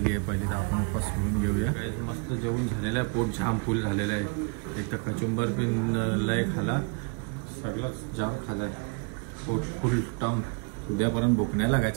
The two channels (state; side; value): quieter; left; 33.3 dB